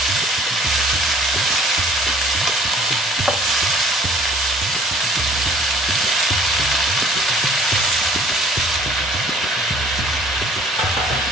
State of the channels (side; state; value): both; normal; correlation 0.54